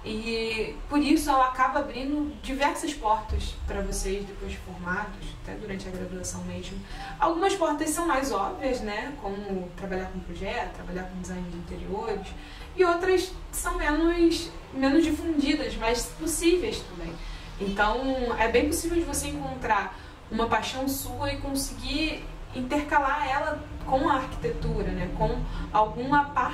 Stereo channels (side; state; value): both; identical; correlation 1.00